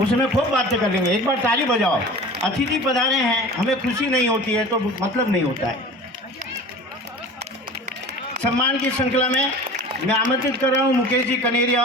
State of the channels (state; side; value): normal; both; correlation 0.39